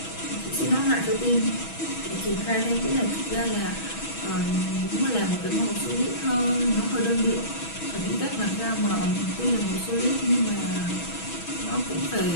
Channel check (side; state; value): right; late; 6.2 ms